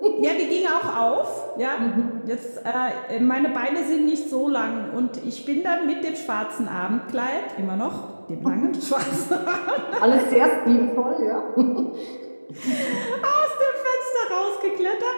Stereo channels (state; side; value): inverted; both; correlation -1.00